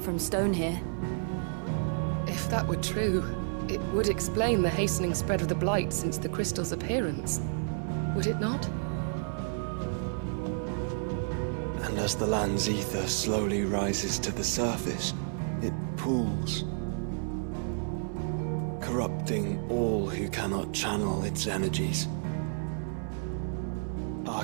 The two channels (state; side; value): silent; left; 57 dB below the other